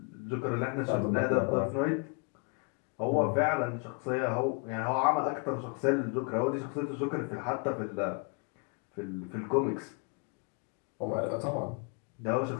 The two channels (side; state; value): right; quieter; 34.2 dB